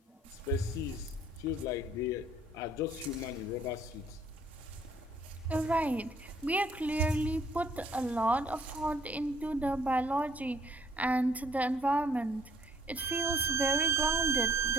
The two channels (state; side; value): normal; both; correlation 0.61